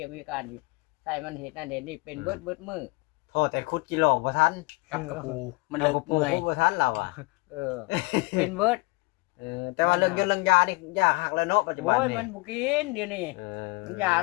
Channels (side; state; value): right; quieter; 25.4 dB